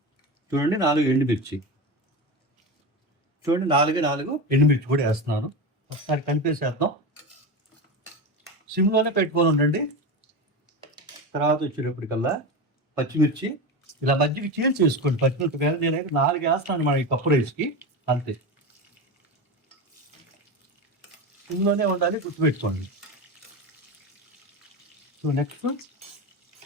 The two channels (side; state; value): both; normal; correlation 0.22